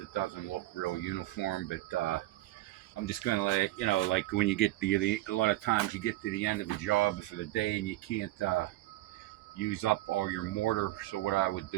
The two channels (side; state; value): left; quieter; 16.7 dB